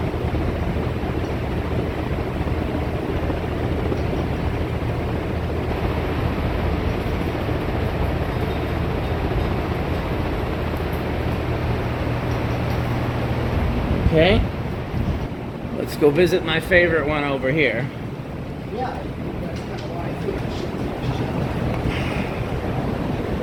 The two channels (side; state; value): both; identical; correlation 1.00